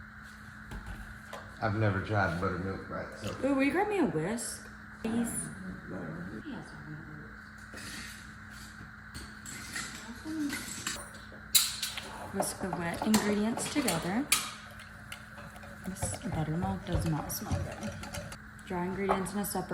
I've never tried buttermilk, right? So. Ooh, will you grab me a whisk, please? Whisk the wet ingredients together. This buttermilk does not smell good. Dry ingredients in a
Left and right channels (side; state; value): both; identical; correlation 1.00